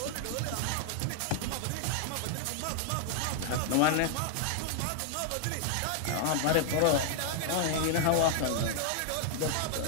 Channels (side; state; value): both; different; correlation 0.00